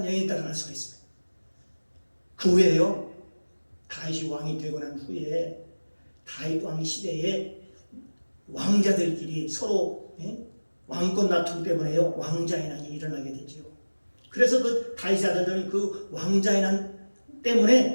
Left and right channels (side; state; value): both; inverted; correlation -1.00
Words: 여인이다라고 할 수가 있습니다. 그 후에요, 다윗이 왕이 되고 난 후에 다윗 왕 시대에 왕자들끼리 서로 왕권 다툼 때문에요, 왕자의 난이 일어나게 되죠. 그래서 그 다윗의 아들들은 그 왕자의 난